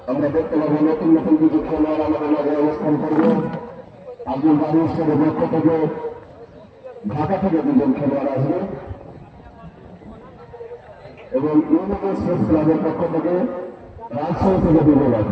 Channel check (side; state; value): both; identical; correlation 1.00